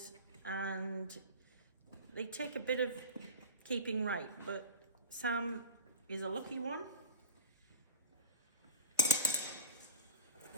and they take a bit of keeping right, but Sam is a lucky one.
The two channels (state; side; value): inverted; both; correlation -0.32